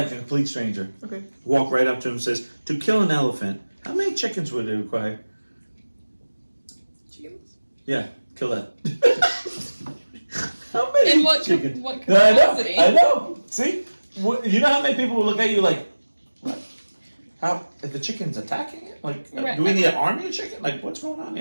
a complete stranger. Okay. Walk right up to him and says, to kill an elephant, how many chickens would it require? Chickens? Yeah, kill that. How many In what chickens? what No, I capacity? know. See? You know how many people will look at you like, what? How, if the chicken's attacking it? Like, Right. do we need an army of chicken? Like, what's going on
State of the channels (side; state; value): both; inverted; correlation -1.00